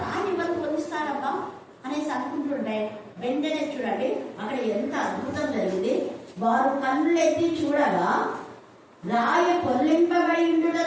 రాయి ఎవరు పొందిస్తారబ్బా అనేసి అనుకుంటుంటే, వెంటనే చూడండి అక్కడ ఎంత అద్భుతం జరిగింది. వారు కన్నులెత్తి చూడగా రాయి పొల్లింపబడి ఉండుట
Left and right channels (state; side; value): identical; both; correlation 1.00